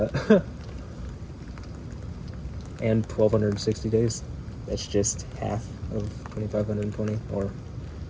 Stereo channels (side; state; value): both; identical; correlation 1.00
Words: and 1,260 days, that's just half of 2,520, or